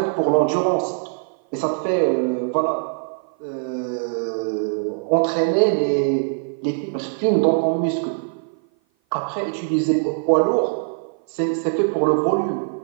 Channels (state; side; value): silent; left; 55 dB below the other